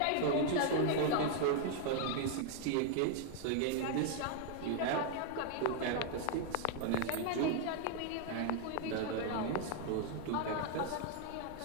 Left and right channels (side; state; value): both; different; correlation 0.00